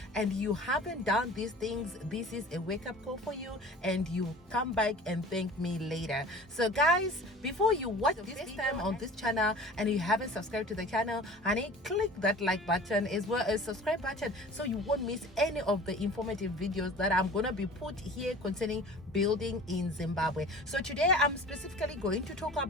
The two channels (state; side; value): normal; both; correlation 0.42